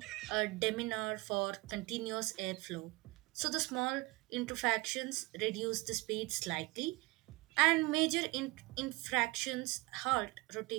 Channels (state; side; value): quieter; left; 23.1 dB